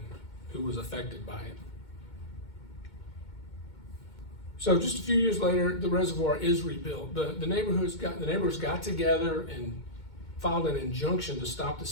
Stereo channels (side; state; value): right; late; 2.2 ms